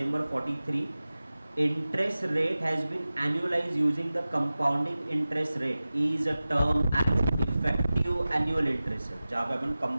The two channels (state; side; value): inverted; both; correlation -0.96